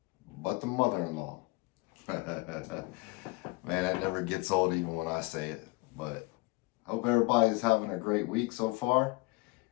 but the mother-in-law. Man, that never gets old even when I say it. But hope everybody's having a great week so far.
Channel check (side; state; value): right; quieter; 25.1 dB